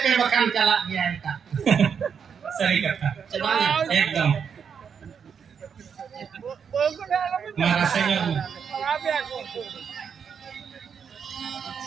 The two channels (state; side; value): quieter; left; 6.9 dB